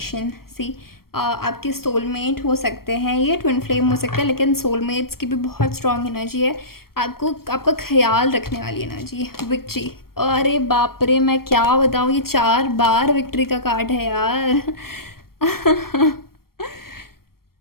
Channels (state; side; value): late; right; 0.94 ms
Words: सी आपके सोलमेट हो सकते हैं, ये ट्विन फ्लेम हो सकते हैं, लेकिन सोलमेट्स की भी बहुत स्ट्रॉन्ग एनर्जी है। आपको आपका ख्याल रखने वाली एनर्जी। विक्ट्री, अरे बाप रे, मैं क्या बताऊँ, ये 4 बार विक्ट्री का कार्ड है यार।